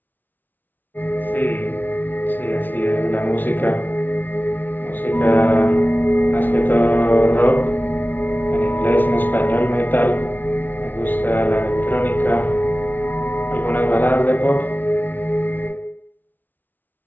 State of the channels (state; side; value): late; right; 0.087 ms